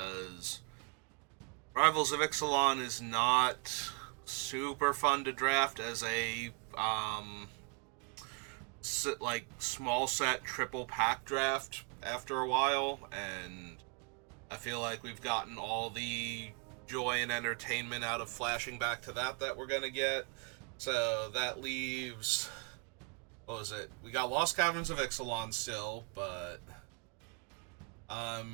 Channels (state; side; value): quieter; left; 35.3 dB